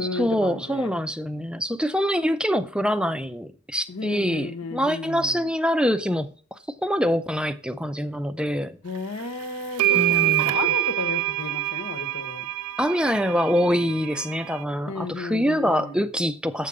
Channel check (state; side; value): normal; both; correlation 0.64